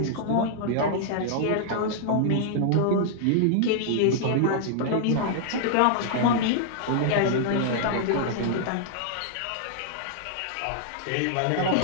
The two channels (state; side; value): different; both; correlation -0.01